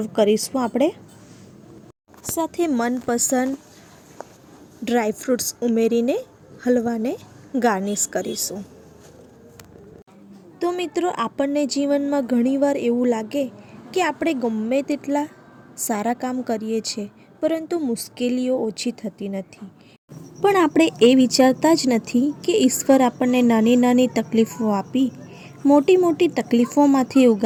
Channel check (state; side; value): identical; both; correlation 1.00